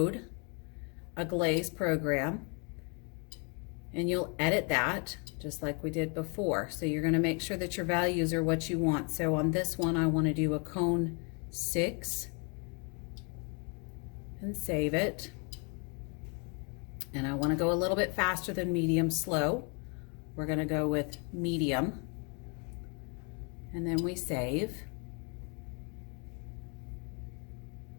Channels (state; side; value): quieter; right; 36.0 dB